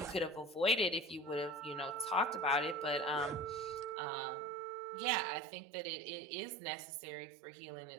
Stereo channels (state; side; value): drops out; left; at 4.0 s